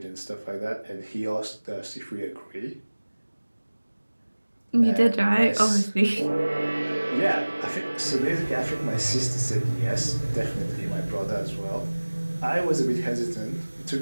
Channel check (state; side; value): inverted; both; correlation -1.00